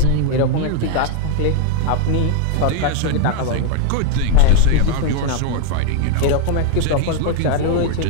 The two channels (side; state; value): both; different; correlation 0.00